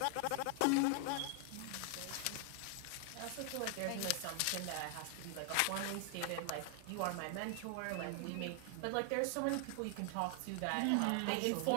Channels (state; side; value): different; both; correlation 0.00